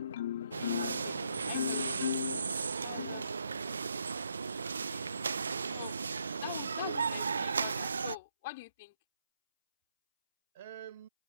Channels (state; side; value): inverted; both; correlation -0.76